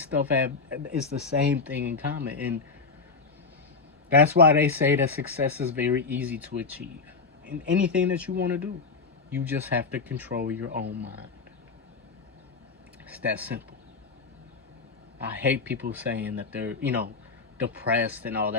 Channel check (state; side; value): quieter; right; 4.5 dB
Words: stuff it's the same thing in common. And that's why they say that success is very easy to achieve. In anything that you want to do, you just have to control your own mind. It's that simple. I hate people saying that they're, depressed and all